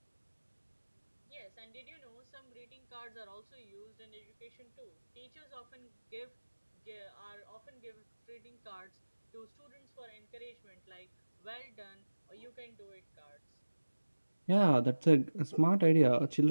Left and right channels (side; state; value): both; inverted; correlation -1.00